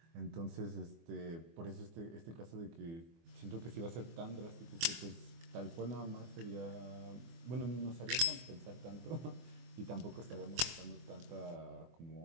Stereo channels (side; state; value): left; late; 24 ms